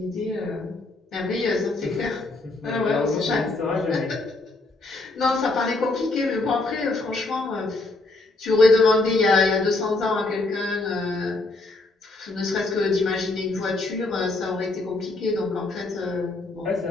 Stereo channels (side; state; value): right; quieter; 3.2 dB